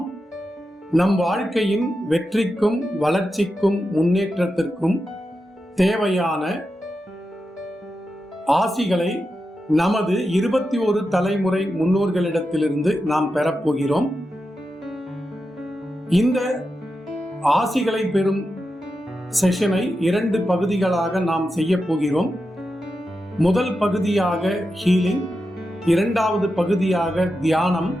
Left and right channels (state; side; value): normal; both; correlation 0.89